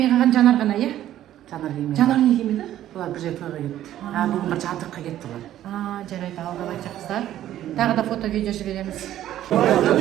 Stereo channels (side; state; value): left; quieter; 12.5 dB